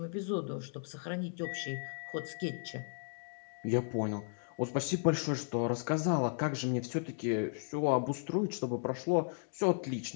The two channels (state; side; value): silent; right; digital silence